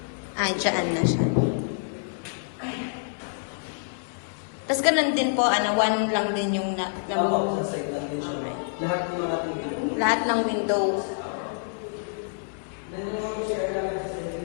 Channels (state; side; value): silent; right; digital silence